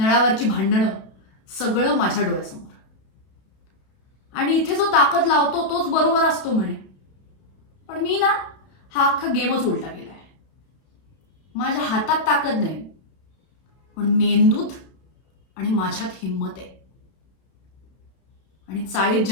भांडणं सगळं माझ्या डोळ्यासमोर. आणि इथे जो ताकद लावतो तोच बरोबर असतो म्हणे, पण मी ना हा अख्खा गेमच उलटा केलाय. माझ्या हातात ताकद नाही, पण मेंदूत आणि माझ्यात हिंमत आहे. आणि चाळीत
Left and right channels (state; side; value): late; right; 32 ms